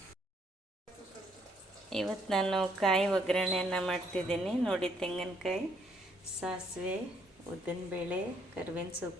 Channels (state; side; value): normal; both; correlation 0.69